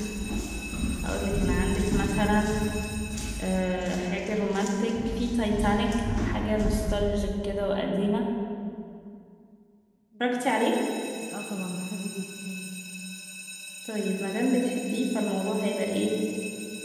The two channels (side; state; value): both; identical; correlation 1.00